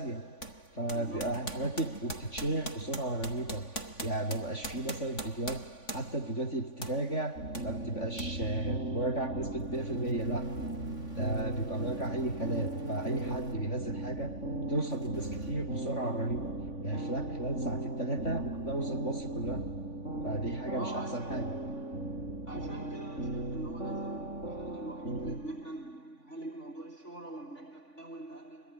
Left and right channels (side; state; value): right; late; 3.5 ms